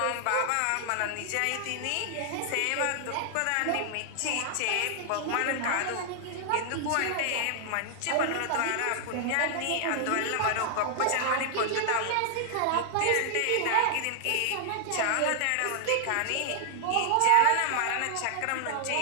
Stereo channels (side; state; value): both; different; correlation 0.00